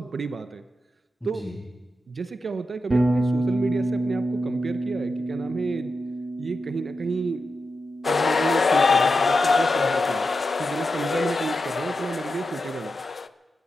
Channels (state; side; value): normal; both; correlation 0.89